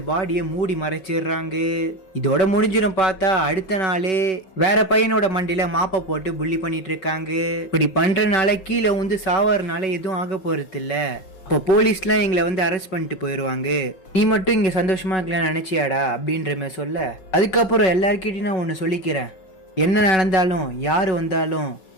பாடியை மூடி மறைச்சிடுறாங்க. இதோட முடிஞ்சிடும். பார்த்தா அடுத்த நாளே வேற பையனோட மண்டியில மாப்பை போட்டு புள்ளி பண்ணிட்டு இருக்காங்க. இப்படி பண்றதுனால கீழே வந்து சாவறதுனால எதுவும் ஆக போறது இல்ல. இப்போ போலீஸ்லாம் எங்களை வந்து அரெஸ்ட் பண்ணிட்டு போயிடுவாங்க, நீ மட்டும் இங்க சந்தோஷமா இருக்கலாம்னு நினைச்சியாடா அப்படின்ற மாதிரி சொல்ல, அதுக்கப்புறம் எல்லாருக்கிட்டையும் நான் ஒன்று சொல்லிக்கிறேன், என்ன நடந்தாலும் யாரு வந்தாலும்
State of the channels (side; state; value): right; late; 5.3 ms